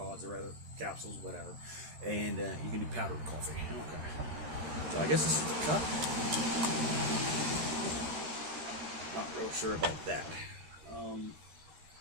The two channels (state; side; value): late; left; 13 ms